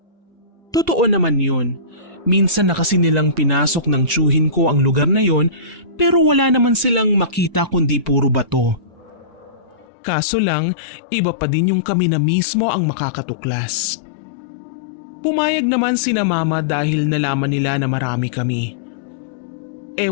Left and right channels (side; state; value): right; drops out; at 9.9 s